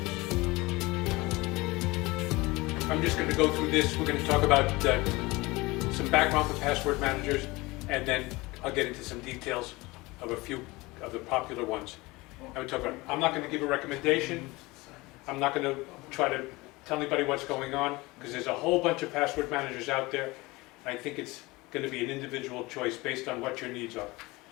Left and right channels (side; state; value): right; quieter; 22.4 dB